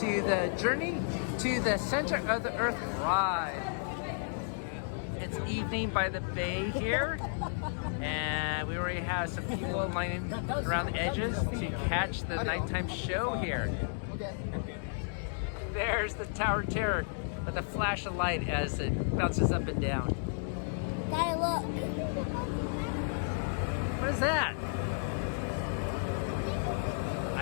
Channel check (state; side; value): silent; right; digital silence